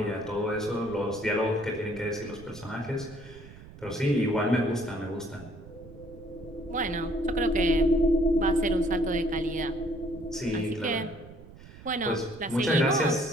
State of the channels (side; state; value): right; noise; rumble, 18 dB below the sound